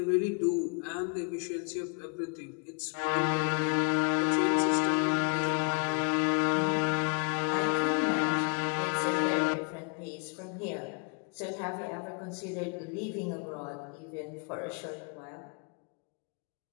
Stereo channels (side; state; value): right; quieter; 36.6 dB